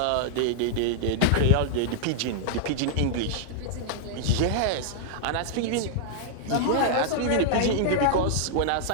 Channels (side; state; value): both; different; correlation -0.01